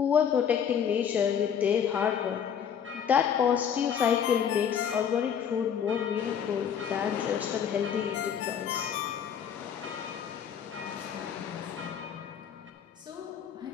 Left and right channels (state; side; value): quieter; right; 8.1 dB